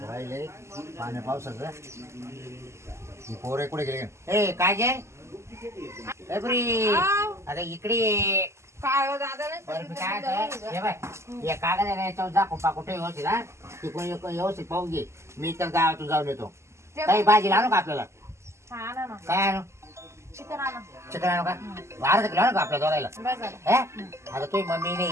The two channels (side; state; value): left; late; 0.13 ms